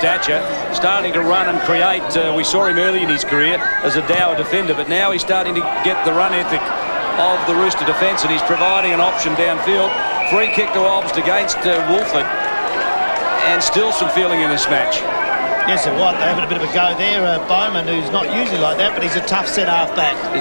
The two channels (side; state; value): both; inverted; correlation -1.00